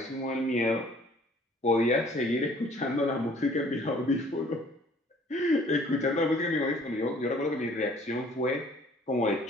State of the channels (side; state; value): both; normal; correlation 0.56